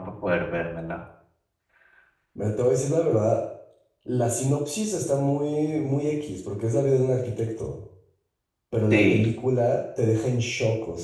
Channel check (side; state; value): both; identical; correlation 1.00